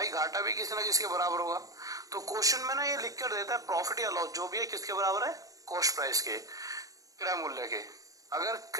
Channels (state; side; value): late; left; 0.17 ms